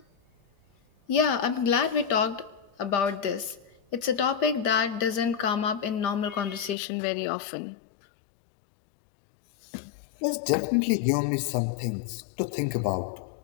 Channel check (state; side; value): drops out; right; at 6.8 s